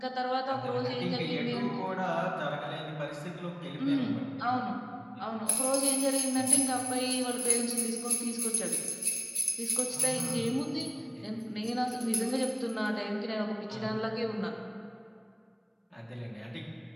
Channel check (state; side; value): identical; both; correlation 1.00